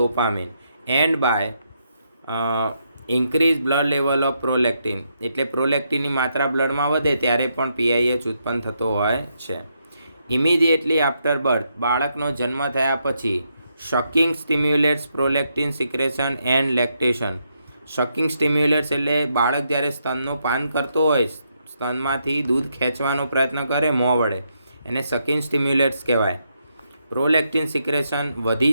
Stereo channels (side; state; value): both; inverted; correlation -0.80